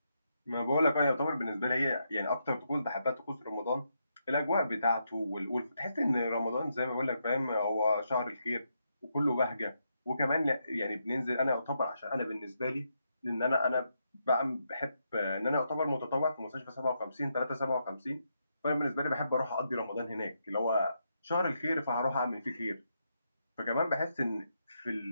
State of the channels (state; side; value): inverted; both; correlation -0.81